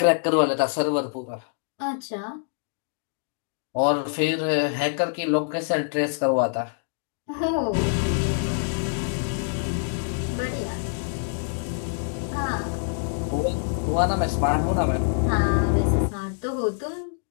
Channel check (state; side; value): silent; right; digital silence